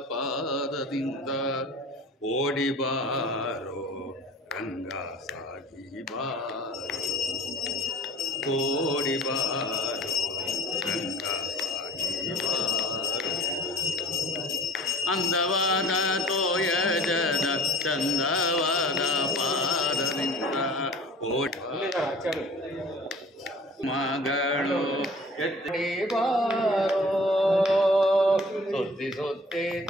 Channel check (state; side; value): normal; both; correlation 0.46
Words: ಪಾದದಿಂದ ಓಡಿ ಬಾರೋ ರಂಗ ಸಾಗಿ ಬಾರೋ, ಓಡಿ ಬಾರೋ ರಂಗ ಸಾಗಿ ಬಾರೋ. ಅಂದವಾದ ತೋಯಜದ ಚಂದವಾದ ಪಾದದಿಂದ ಓಡಿ ಮಗಳು ಎತ್ತಿ ಬಾರೋ, ಸುತ್ತಿ ಸುತ್ತಿ